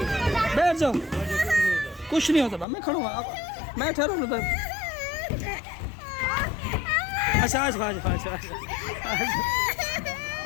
जाओ कुछ नहीं होता मैं खड़ा हूँ मैं ठहरा हूँ अच्छा आज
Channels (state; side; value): drops out; right; at 2.7 s